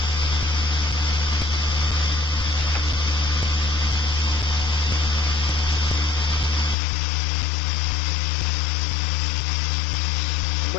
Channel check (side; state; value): right; drops out; at 6.8 s